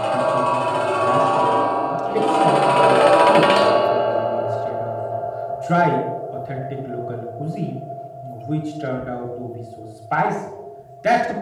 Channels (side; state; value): both; identical; correlation 1.00